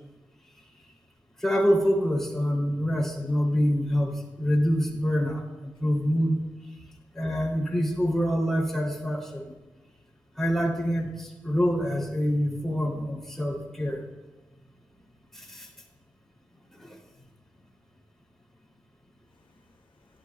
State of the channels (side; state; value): both; normal; correlation 0.95